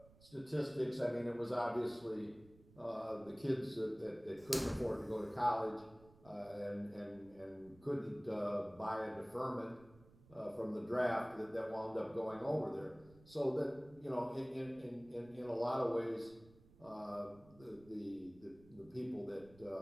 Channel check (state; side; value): noise; right; rumble, 24 dB below the sound